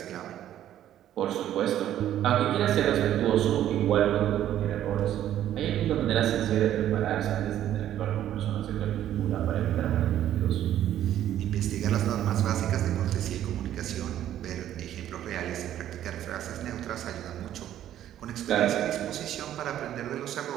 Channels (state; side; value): quieter; left; 11.7 dB